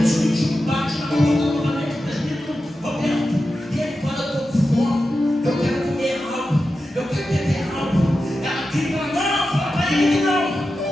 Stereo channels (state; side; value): normal; both; correlation 0.91